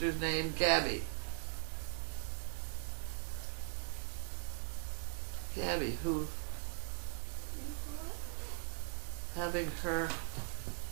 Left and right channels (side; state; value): left; silent; 51 dB below the other